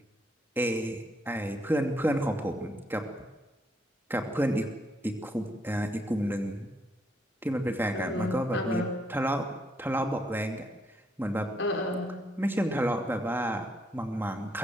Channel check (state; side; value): normal; both; correlation 0.74